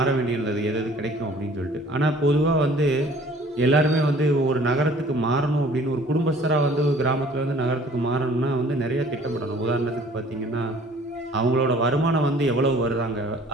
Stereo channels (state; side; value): normal; both; correlation 0.53